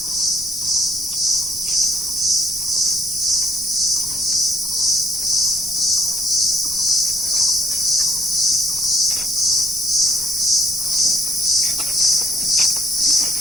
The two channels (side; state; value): left; noise; rumble, 20 dB below the sound